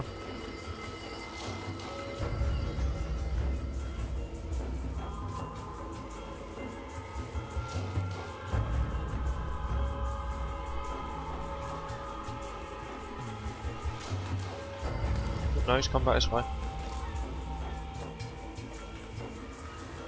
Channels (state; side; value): identical; both; correlation 1.00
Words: No, he's come back this way.